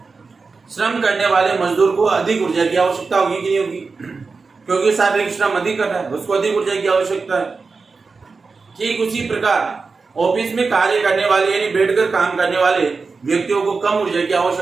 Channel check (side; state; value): left; quieter; 4.4 dB